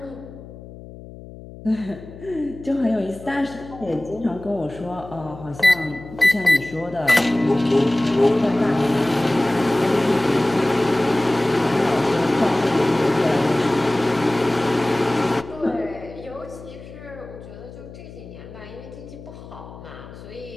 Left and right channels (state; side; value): noise; left; hum, 16 dB below the sound